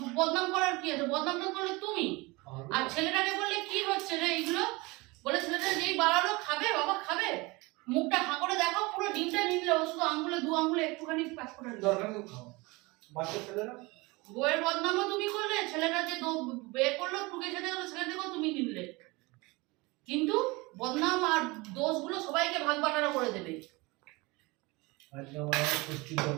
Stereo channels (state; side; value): quieter; left; 24.2 dB